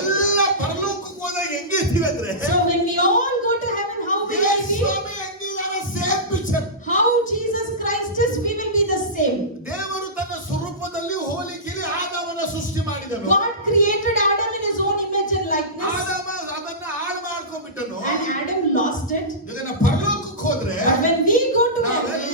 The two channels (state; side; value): normal; both; correlation -0.19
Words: ಪರಲೋಕಕ್ಕೆ ಹೋದಾಗ ಹೆಂಗಿರ್ತೀವಿ ಅಂದ್ರೆ, So when we all go to heaven, how will I be? ಸ್ವಾಮಿ ಹೆಂಗಿದ್ದಾರೆ, same picture. How Jesus Christ is, we will be the same. ದೇವರು ತನ್ನ ಸ್ವರೂಪದಲ್ಲಿ ಹೋಲಿಕೆಯಲ್ಲಿ ಆದಾಮನ ಸೃಷ್ಟಿ ಮಾಡಿದನು. God created Adam in his own image and likeness, ಆದಾಮ ಅದನ್ನ ಹಾಳು ಮಾಡ್ಕೊಂಡ್ಬಿಟ್ಟನು. and Adam lost it. ಈಗ ನಾವು ಪರಲೋಕಕ್ಕೆ ಹೋದ್ರೆ But when we go to